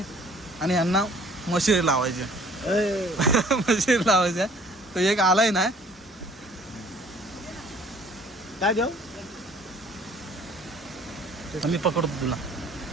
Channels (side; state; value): both; normal; correlation 0.55